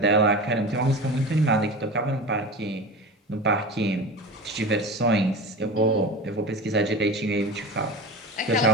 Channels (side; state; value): both; normal; correlation 0.30